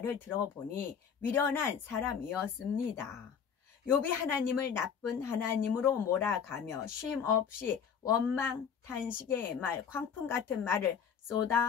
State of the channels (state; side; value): quieter; right; 7.2 dB